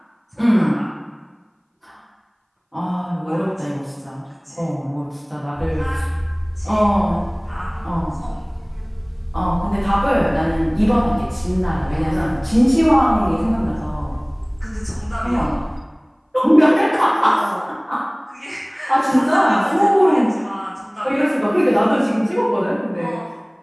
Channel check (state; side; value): identical; both; correlation 1.00